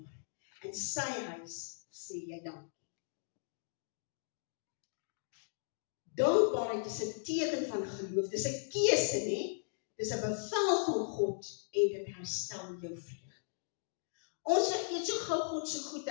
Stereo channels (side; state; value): right; silent; digital silence